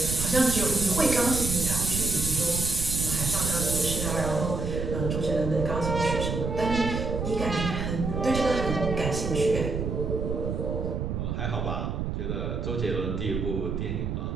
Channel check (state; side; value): noise; right; rumble, 3 dB below the sound